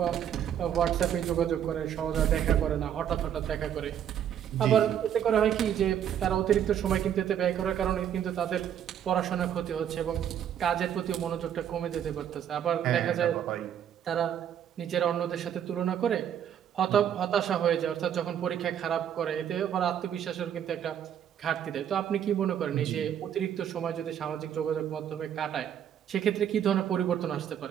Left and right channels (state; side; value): quieter; left; 9.6 dB